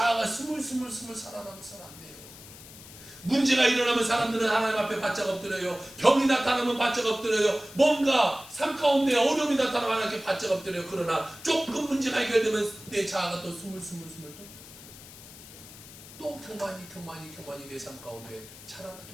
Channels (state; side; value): noise; left; hiss, 17 dB below the sound